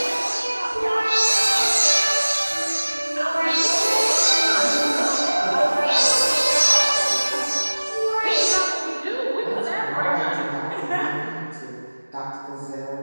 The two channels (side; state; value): both; inverted; correlation -1.00